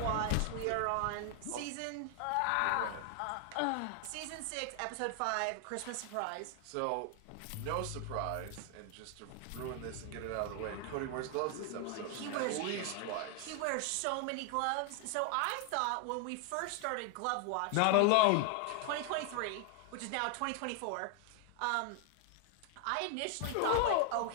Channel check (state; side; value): different; both; correlation 0.00